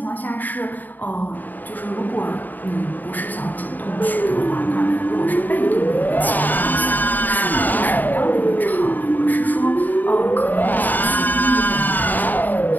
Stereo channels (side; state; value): right; late; 0.086 ms